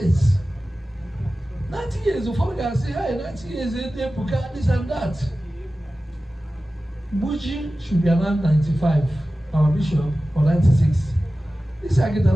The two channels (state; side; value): normal; both; correlation 0.95